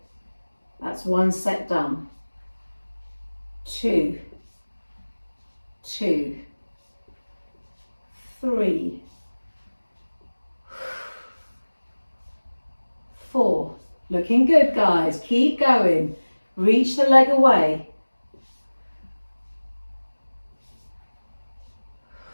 That's 1 set done. 2, 2, 3, 4. Looking good, guys. Keep going. Reach the leg away.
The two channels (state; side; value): inverted; both; correlation -1.00